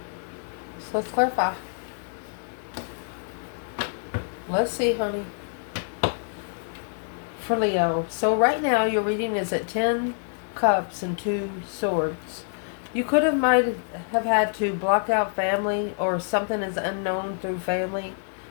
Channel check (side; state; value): right; silent; 58 dB below the other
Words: So let's clarify. Let's see, honey. For Leo. So right now your reading is at 10 Cups and 2 Swords. You could have might have had to block out family, or something is unknown through family.